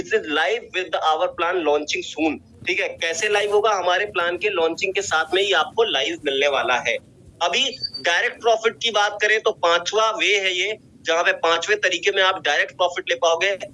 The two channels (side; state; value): both; identical; correlation 1.00